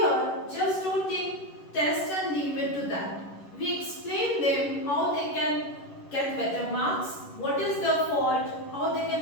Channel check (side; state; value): right; late; 11 ms